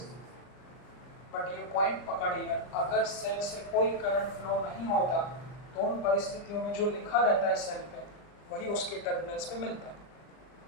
है। बट ये पॉइंट पकड़िए, अगर सेल से कोई करंट फ्लो नहीं होता तो उन परिस्थितियों में जो लिखा रहता है सेल पे वही उसके टर्मिनल्स पे मिलता है।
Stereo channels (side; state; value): right; late; 39 ms